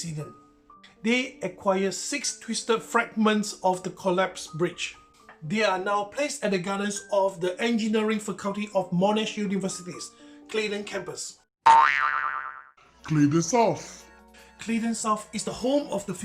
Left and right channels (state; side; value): identical; both; correlation 1.00